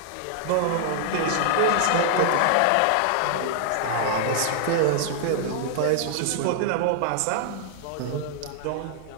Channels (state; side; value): different; both; correlation -0.01